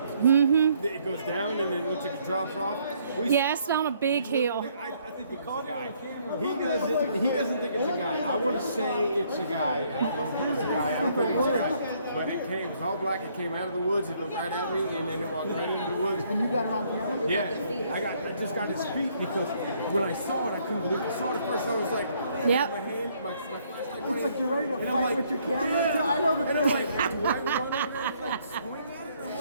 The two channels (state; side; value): inverted; both; correlation -0.67